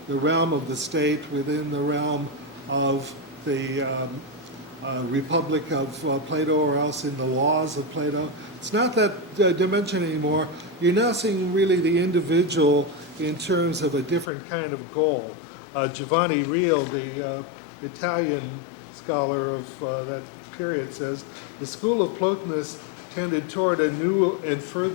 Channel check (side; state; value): right; drops out; at 14.3 s